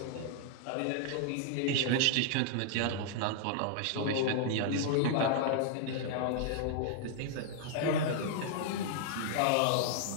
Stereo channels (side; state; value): both; different; correlation -0.01